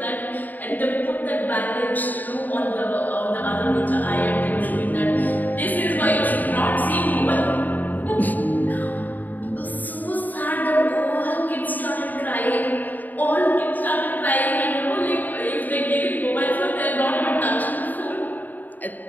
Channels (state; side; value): late; right; 0.085 ms